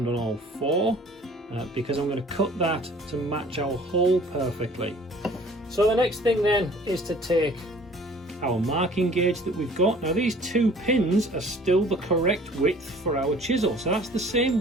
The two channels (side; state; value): both; normal; correlation 0.51